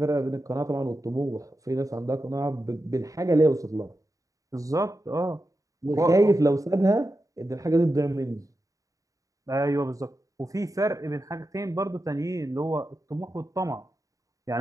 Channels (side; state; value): left; late; 0.16 ms